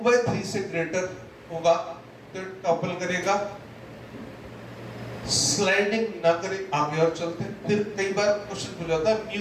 से ग्रेटर होगा तो टॉपल करेगा, स्लाइडिंग ना करे। आगे और चलते हैं। फिर कई बार क्वेश्चन पूछा जाता है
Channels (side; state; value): both; identical; correlation 1.00